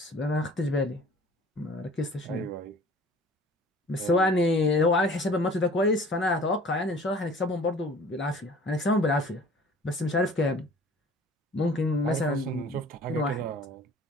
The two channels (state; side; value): normal; both; correlation 0.48